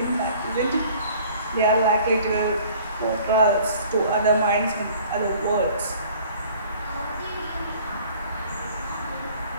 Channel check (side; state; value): both; inverted; correlation -0.52